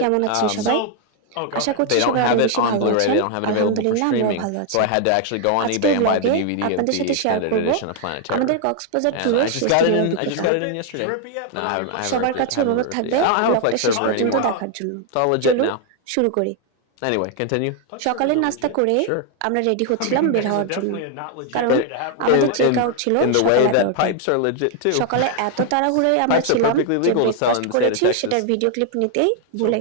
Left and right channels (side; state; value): both; different; correlation 0.00